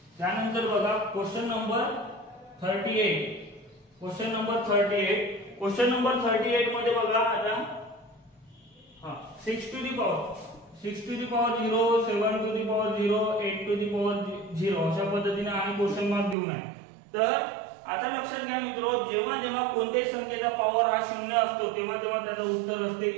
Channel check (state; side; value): drops out; left; at 16.4 s